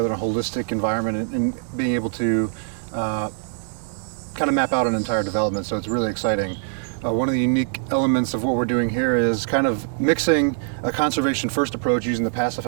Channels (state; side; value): silent; left; digital silence